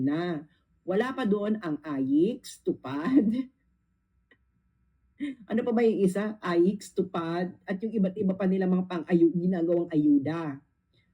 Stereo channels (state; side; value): identical; both; correlation 1.00